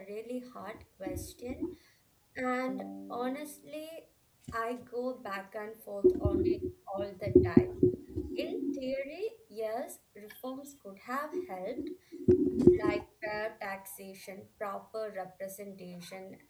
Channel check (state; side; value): identical; both; correlation 1.00